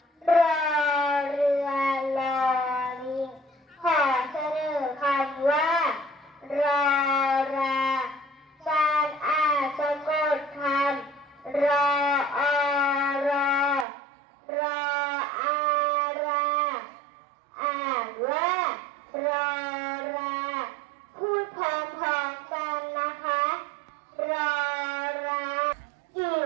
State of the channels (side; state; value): left; drops out; at 13.9 s